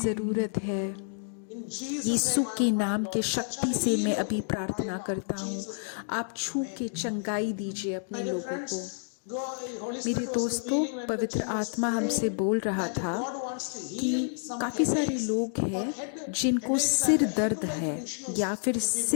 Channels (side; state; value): right; silent; digital silence